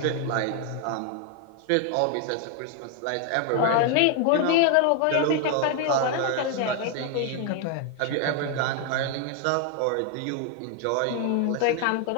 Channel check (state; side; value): different; both; correlation 0.00